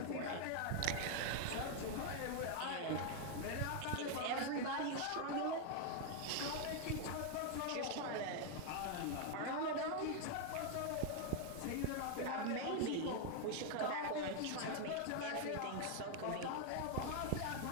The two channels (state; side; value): different; both; correlation 0.00